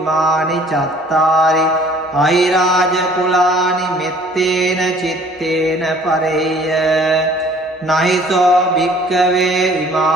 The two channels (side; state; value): both; normal; correlation 0.54